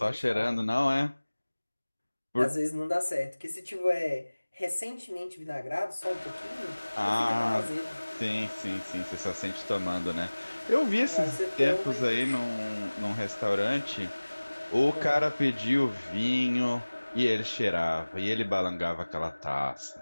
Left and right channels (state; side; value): inverted; both; correlation -1.00